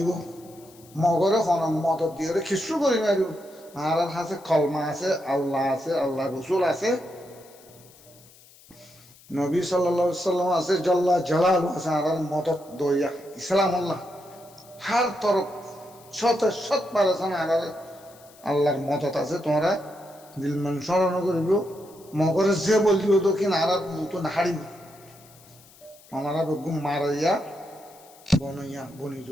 মগরে মদত দিয়ে খিস্রু করি মারিব আর আছে কলমা আছে আল্লাহ রসুল আছে নবী সাল্লাল্লাহু আলাইহি সাল্লাম আছে জল্লা জালাল আছে আর মদত দইয়া ইসলাম আল্লাহ হার তরফ শত পারেছেন আর আল্লাহর মদত আছে তোমরা দিলমান স্মরণ করিব মগরে যে বললিব তো কিনা আর মতো নাহারিব আমরা বেগুন মারাইয়া বনইয়া বনি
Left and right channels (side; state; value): left; noise; hiss, 25 dB below the sound